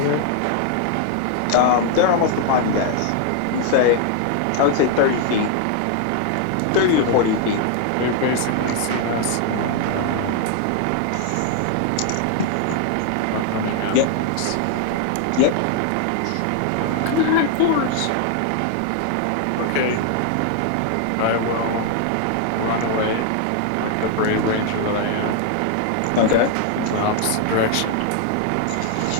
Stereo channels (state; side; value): different; both; correlation 0.00